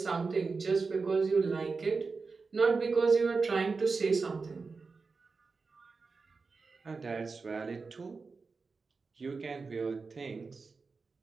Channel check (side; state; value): left; quieter; 4.4 dB